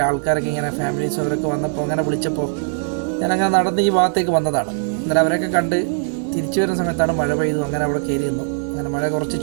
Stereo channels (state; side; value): silent; left; 66 dB below the other